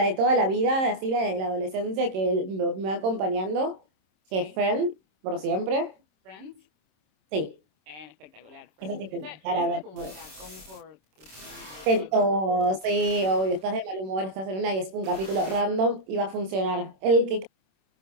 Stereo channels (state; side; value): late; left; 26 ms